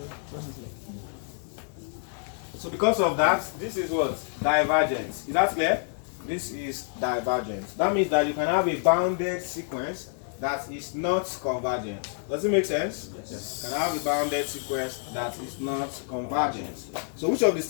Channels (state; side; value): silent; right; 60 dB below the other